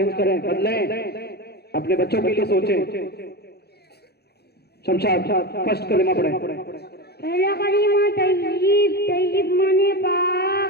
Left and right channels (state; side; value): late; right; 0.47 ms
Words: करें, बदलें, अपने बच्चों के लिए सोचें। शमशाद फर्स्ट कलिमा पढ़ें। पहला कलिमा तय्यब, तय्यब माने